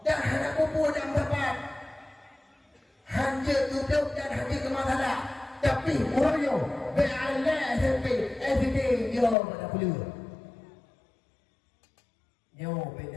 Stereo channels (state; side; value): drops out; right; at 9.3 s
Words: Dan hana pupu dan tepat. Hanja duduk dan hanja kemasala. Tapi moyo beala SMP, everyday dia pada puluh. Nyo